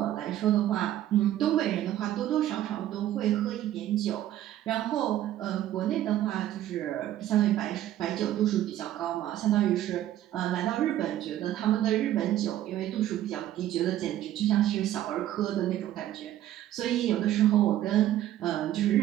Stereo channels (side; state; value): left; quieter; 12.8 dB